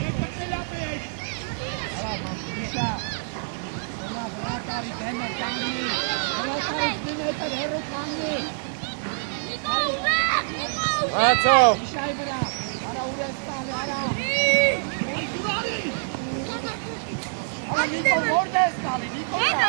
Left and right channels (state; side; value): silent; left; digital silence